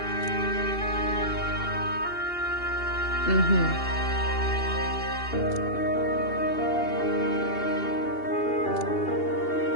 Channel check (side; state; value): right; late; 2.7 ms